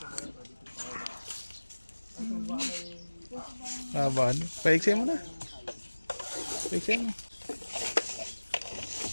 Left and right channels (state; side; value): inverted; both; correlation -1.00